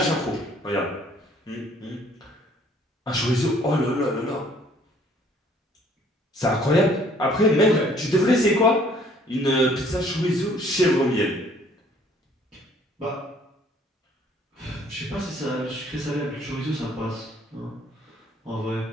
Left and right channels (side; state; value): both; normal; correlation 0.59